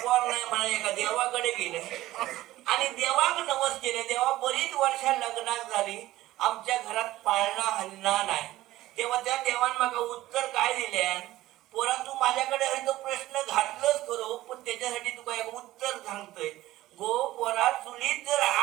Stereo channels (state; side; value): quieter; left; 16.0 dB